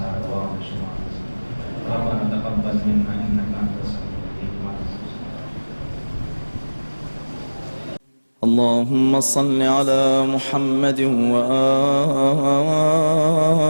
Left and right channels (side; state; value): both; inverted; correlation -1.00